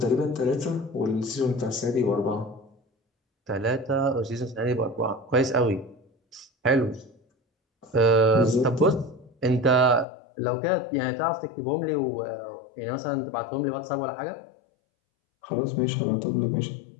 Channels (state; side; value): drops out; right; at 10.1 s